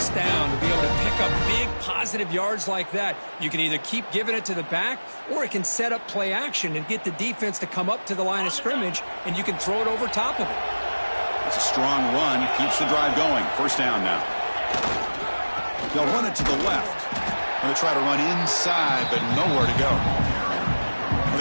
down to be able to pick up big positive yards like that. You can either keep giving it to the back, or it can set up play action and get the defense to come up to the line of scrimmage, and you can throw it over top of it. It's a strong run. Keeps the drive going. First down now. They'll run it to the left. Going to try to run inside, but nowhere to go.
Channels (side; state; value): both; inverted; correlation -1.00